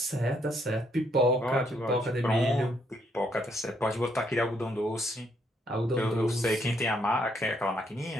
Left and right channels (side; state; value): both; normal; correlation 0.72